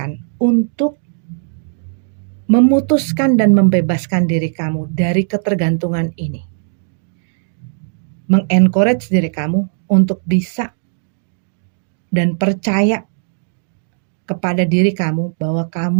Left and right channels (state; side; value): silent; left; digital silence